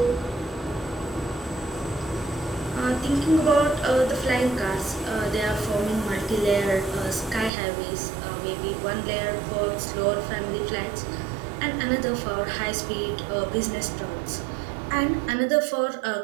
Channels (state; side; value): drops out; left; at 7.5 s